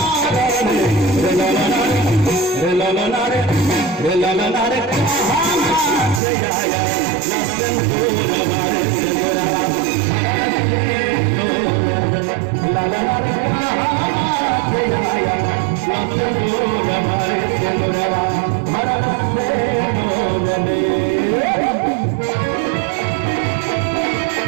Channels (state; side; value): drops out; left; at 6.2 s